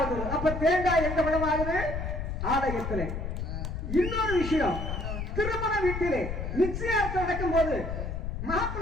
வருது. அப்ப தேங்காய் எங்க பழம் ஆகுது? ஆலயத்திலே. இன்னொரு விஷயம், திருமண வீட்டிலே நிச்சயார்த்தம் நடக்கும் போது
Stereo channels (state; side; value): noise; left; rumble, 4 dB below the sound